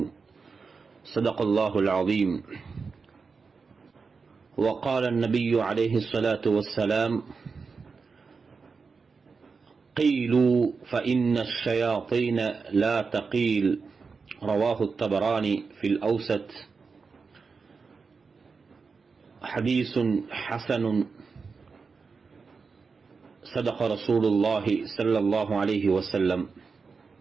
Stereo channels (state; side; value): quieter; left; 4.9 dB